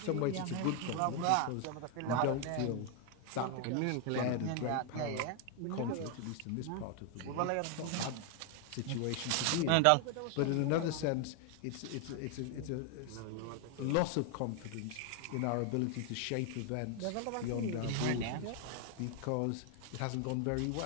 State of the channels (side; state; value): both; different; correlation 0.00